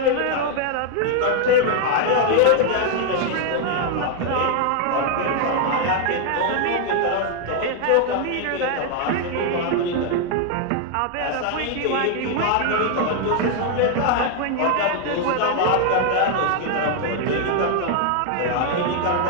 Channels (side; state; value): both; different; correlation 0.00